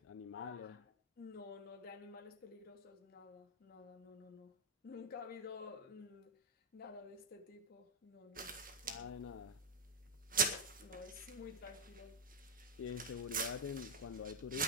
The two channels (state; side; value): normal; both; correlation -0.02